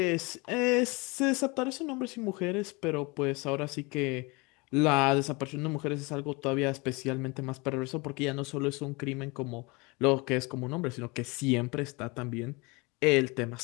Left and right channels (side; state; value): right; quieter; 26.9 dB